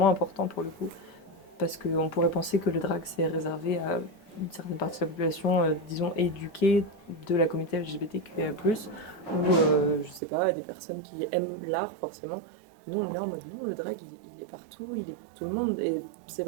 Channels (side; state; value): left; drops out; at 10.2 s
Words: important pour le coup. Parce qu'on pourrait penser que le drag c'est réservé à une certaine partie de la population, disons, éduquée de la communauté LGBTQIA+, ou, je sais pas, des personnes qui aiment l'art, forcément. Nous, on est là en mode, non, le drag, il est partout, il est pour tout le monde. Et c'est